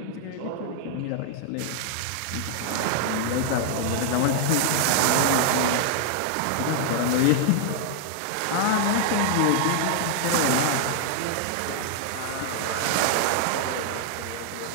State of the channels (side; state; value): both; different; correlation -0.01